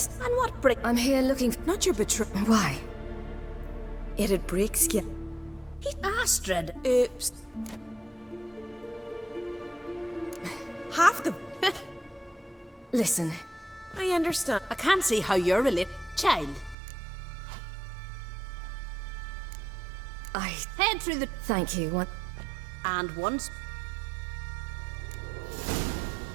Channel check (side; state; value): left; drops out; at 16.8 s